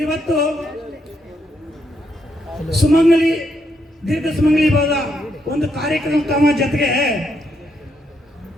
ಇವತ್ತು ಸುಮಂಗಲಿ ದೀರ್ಘ ಸುಮಂಗಲಿ ಭವದ ಒಂದು ಕಾರ್ಯಕ್ರಮ ಜೊತೆಗೆ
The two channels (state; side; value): normal; both; correlation 0.78